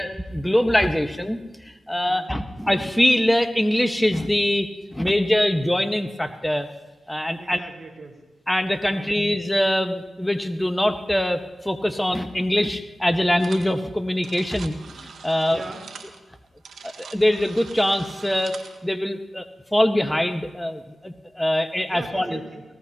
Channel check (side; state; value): both; normal; correlation 0.98